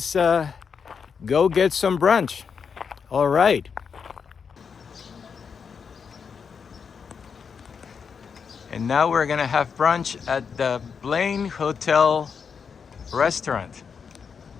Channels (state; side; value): quieter; right; 6.3 dB